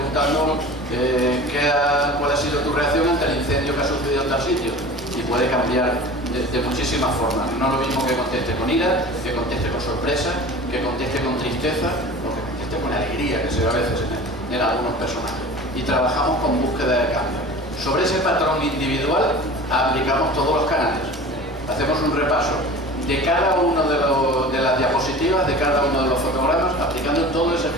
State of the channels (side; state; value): left; noise; hum, 27 dB below the sound